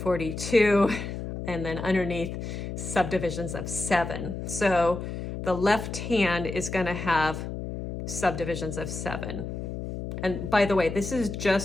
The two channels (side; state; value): left; noise; hum, 6 dB below the sound